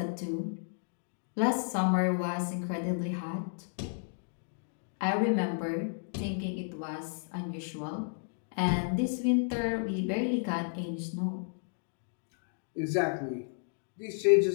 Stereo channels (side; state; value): right; silent; digital silence